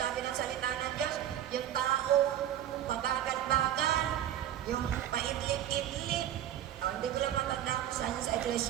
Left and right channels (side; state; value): left; quieter; 11.4 dB